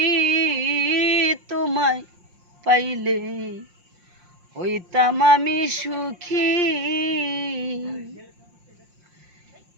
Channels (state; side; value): late; left; 5.6 ms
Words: তোমায় পাইলে হইতাম আমি সুখী।